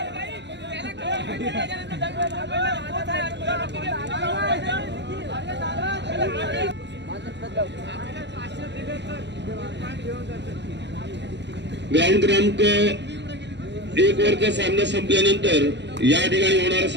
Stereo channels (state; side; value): late; left; 0.51 ms